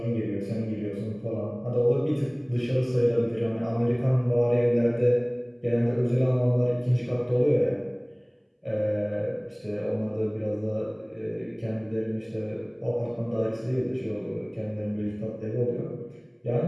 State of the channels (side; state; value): both; identical; correlation 1.00